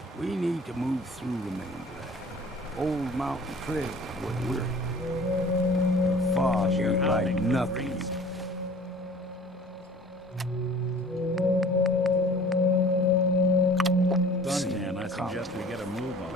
We need to move through the mainland. Old Mountain Trail is what we're here. The fog ain't like nothing. Suntan, I suggest we get a move on.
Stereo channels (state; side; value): normal; both; correlation 0.47